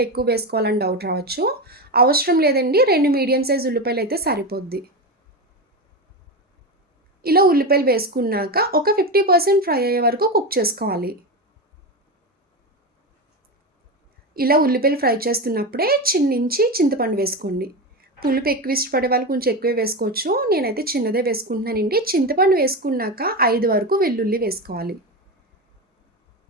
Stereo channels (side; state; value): both; normal; correlation 0.17